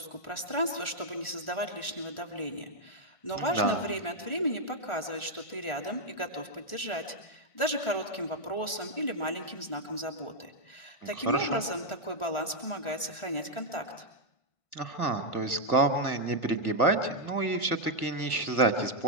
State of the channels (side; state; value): right; late; 1.4 ms